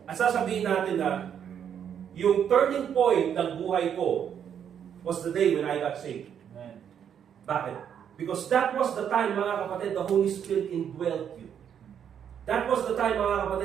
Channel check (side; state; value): left; quieter; 8.6 dB